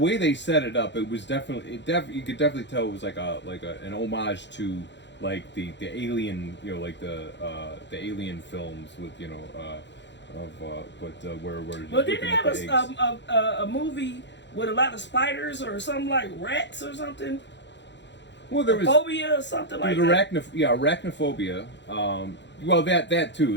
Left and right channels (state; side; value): late; right; 0.52 ms